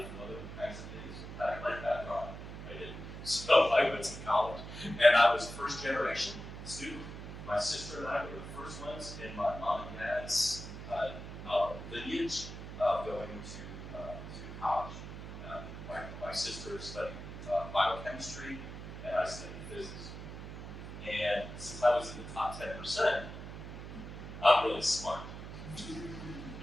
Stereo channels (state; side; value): noise; right; hum, 10 dB below the sound